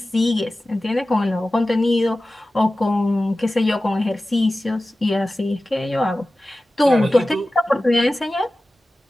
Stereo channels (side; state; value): both; normal; correlation 0.96